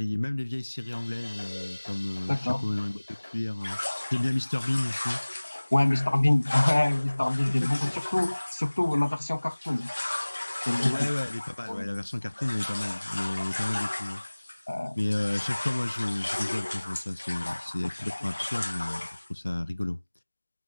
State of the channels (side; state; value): both; inverted; correlation -1.00